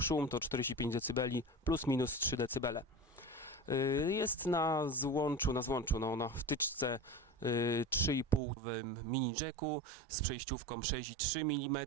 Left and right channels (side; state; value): left; drops out; at 8.4 s